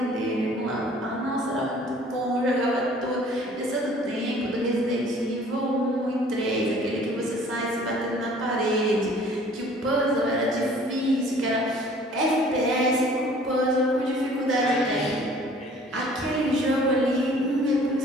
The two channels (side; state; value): both; normal; correlation 0.52